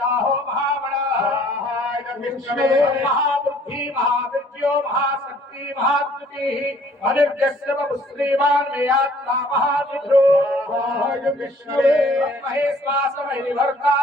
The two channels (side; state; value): both; normal; correlation 0.58